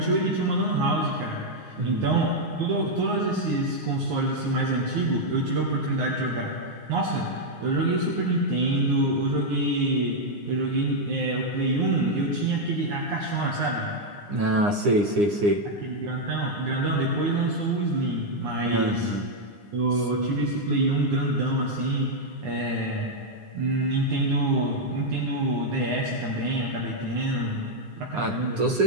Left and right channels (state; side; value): late; left; 9.8 ms